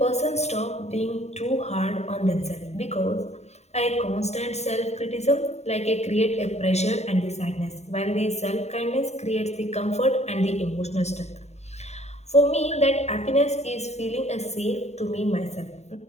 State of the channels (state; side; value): late; right; 0.32 ms